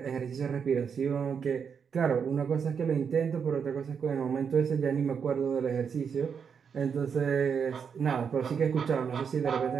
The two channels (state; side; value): quieter; left; 6.7 dB